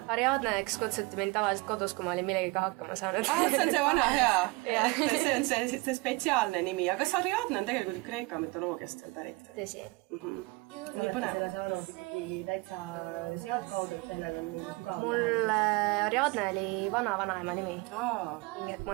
Ariadneks kutsuti mind tavaliselt kodus, kui ma olin millegiga hakkama saanud. See on see vana hea. See on see spetsiaalne nimi. Aga kas Ariadne on tegelikult Kreeka mütoloogiast veel pärit? Tõsi. Sa olete selle saanud ikkagi täitsa sealt kaudu, et sellel on mingi sügav Mul Ariadne oli vanaema nimi. Aa. Mu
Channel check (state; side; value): quieter; left; 25.1 dB